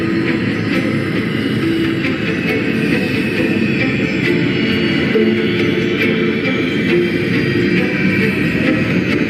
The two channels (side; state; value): both; identical; correlation 1.00